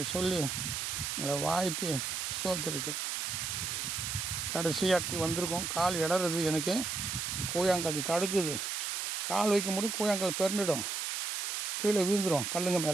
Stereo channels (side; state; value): right; noise; hiss, 2 dB below the sound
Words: சொல்லி உங்களை வாழ்த்தி ஸ்தோத்திரிக்கிறேன். கடைசியாட்டி வந்திருக்கோம். கால் இடறது, எனக்கு கூழாங்கல் தடுக்குது. கால் வைக்க முடியும், கூழாங்கல் பெருந்துடும், கீழே விழுந்துடும். கல்லுங்க